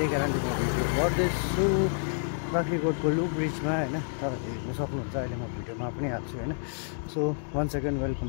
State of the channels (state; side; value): silent; right; digital silence